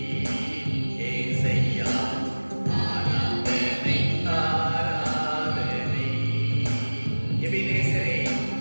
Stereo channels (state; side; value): inverted; both; correlation -1.00